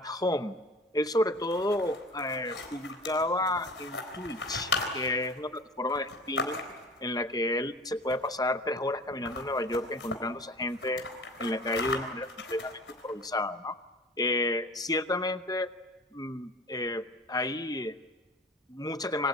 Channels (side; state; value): both; normal; correlation 0.40